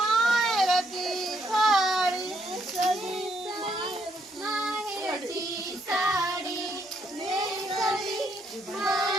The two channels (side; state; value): both; normal; correlation 0.74